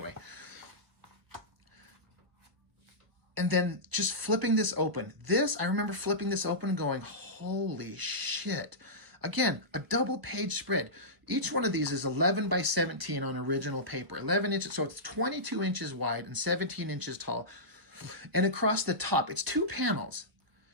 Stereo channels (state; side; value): late; left; 1.0 ms